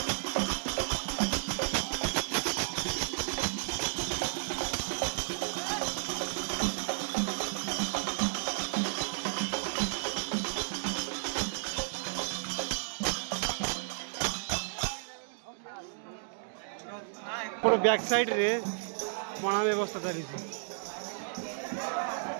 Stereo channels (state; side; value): silent; left; digital silence